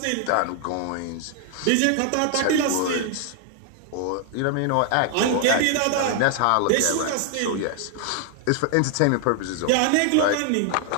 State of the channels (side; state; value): both; different; correlation 0.00